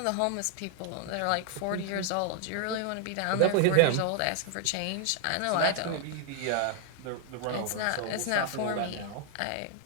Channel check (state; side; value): different; both; correlation 0.00